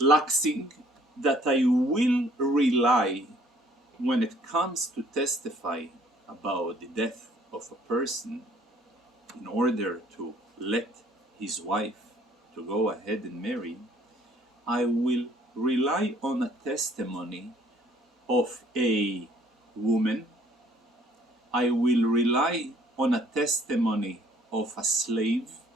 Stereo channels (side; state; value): both; normal; correlation 0.59